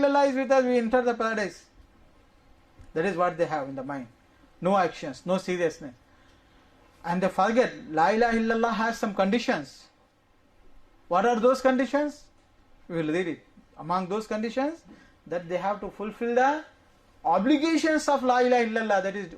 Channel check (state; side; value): identical; both; correlation 1.00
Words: is with us, we enter the paradise. That is what they have in the mind. No actions, no seriousness. And they forget, la ilaha illallah has some conditions. What are those conditions? We will read it. Among those conditions, that they have to fulfill the obligations of la ilaha illallah, that is